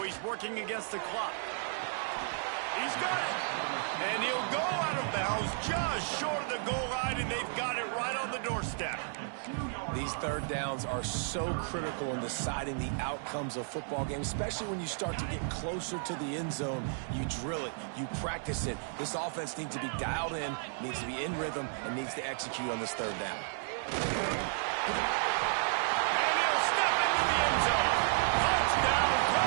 He's working against the clock. He's got it. And he'll go out of bounds just short of the goal line, and they've got it right on the doorstep. These 3rd downs are so critical in deciding the outcomes of football games, especially when you start to get closer to the end zone. You drill it. You practice it. This offense needs to be dialed in, needs to be in rhythm, and needs to execute on this 3rd down.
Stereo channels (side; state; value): left; silent; digital silence